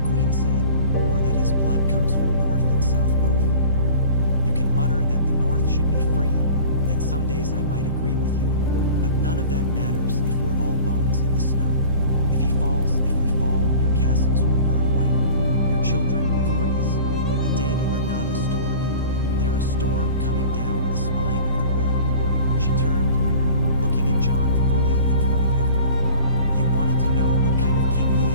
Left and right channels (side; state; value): both; inverted; correlation -0.42